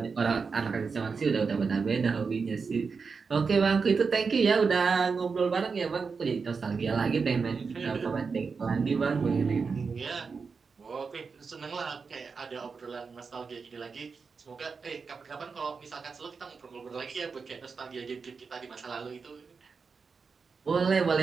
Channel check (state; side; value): quieter; left; 5.1 dB